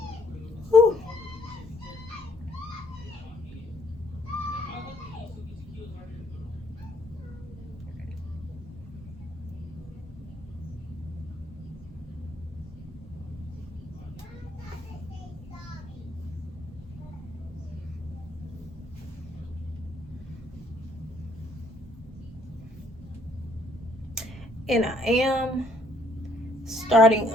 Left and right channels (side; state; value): both; normal; correlation 0.66